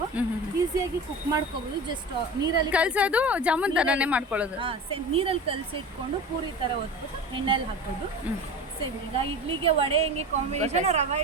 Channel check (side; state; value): both; normal; correlation 0.32